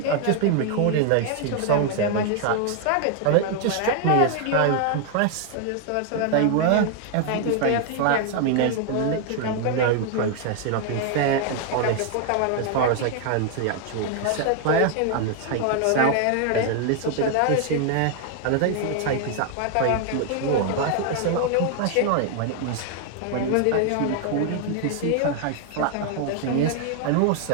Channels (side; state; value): both; different; correlation 0.00